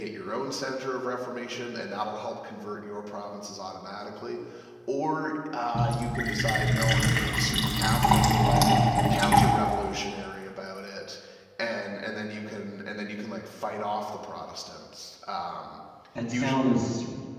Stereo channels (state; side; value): identical; both; correlation 1.00